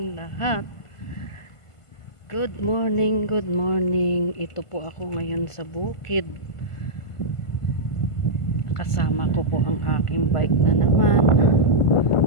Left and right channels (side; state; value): right; late; 1.5 ms